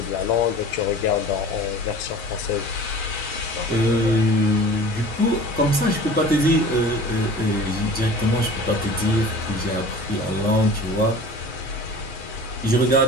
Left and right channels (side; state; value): both; normal; correlation 0.41